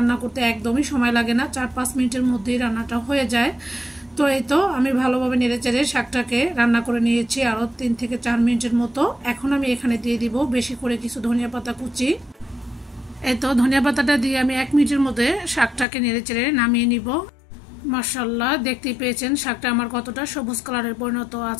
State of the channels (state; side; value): drops out; right; at 15.9 s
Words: করতে একদমই সময় লাগে না, 4-5 মিনিটের মধ্যেই রান্নাটা হয়ে যায়। তো এই তো আমি ভালোভাবে নেড়েচেড়ে শাকটাকে রান্না করে নিয়েছি আরও 3 থেকে 4 মিনিটের মতো। এখন আমি এখানে দিয়ে দিব বেশি করে কিছু ধনিয়া পাতা কুচি। এই তো ধনিয়া পাতাটা দিয়ে আমি 1 মিনিটের মধ্যে শাকটাকে নেড়েচেড়ে নামিয়ে নিব। মাশাআল্লাহ, দেখতেই পেয়েছেন শাকটা আমার কতটা সবুজ কালারের পরিণত